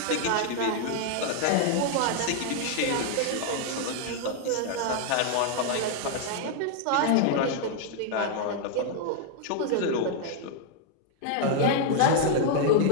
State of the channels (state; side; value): different; both; correlation 0.00